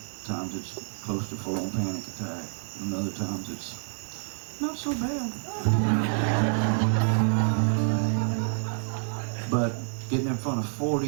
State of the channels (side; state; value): left; silent; 59 dB below the other